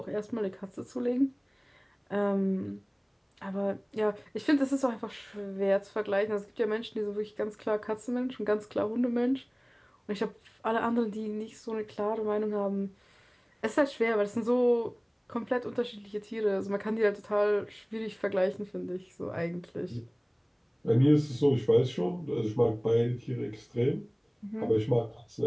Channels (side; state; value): both; identical; correlation 1.00